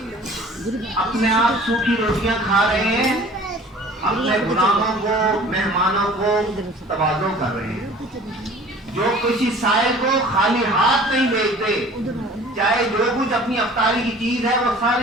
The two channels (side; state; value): both; normal; correlation 0.47